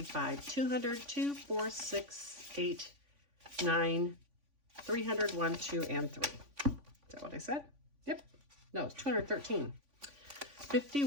200, 2, 4, 6, 8, 9, 300, 1, 2, and 3. Is that what I said? Yep. No, it's 213.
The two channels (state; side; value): late; left; 3.5 ms